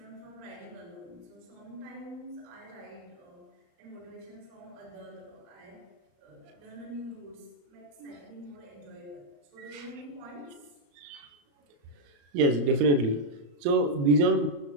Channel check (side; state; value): left; late; 34 ms